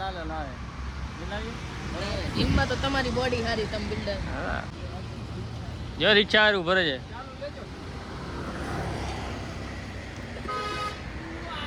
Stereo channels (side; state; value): both; identical; correlation 1.00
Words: લાલો લાવે જીમમાં તો તમારી બોડી સારી તમે બિલ્ડર. હા જો રિક્ષા હારું ભરે છે